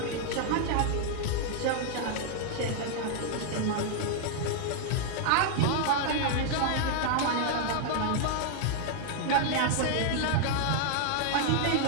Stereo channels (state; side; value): different; both; correlation 0.00